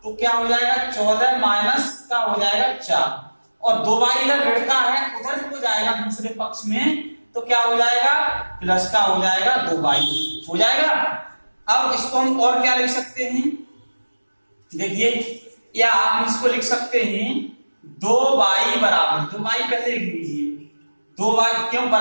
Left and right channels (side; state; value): both; inverted; correlation -1.00